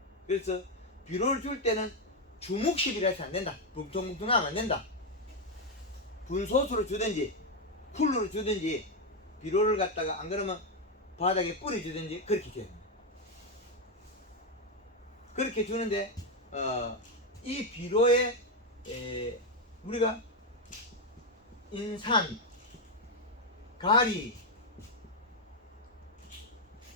그래서 비료를 줄 때는 주묵식이라 해서 안 된다. 뭉텅뭉텅하면 안 된다. 분소수로 주든지 쿨러로 주든지 비료를 갖다가 안 그러면 바닥에 뿌려 주든지 그렇게 줘야 됩니다. 그렇게 주는데 이 비료에 우리가 인산, 가리,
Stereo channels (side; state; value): both; normal; correlation 0.05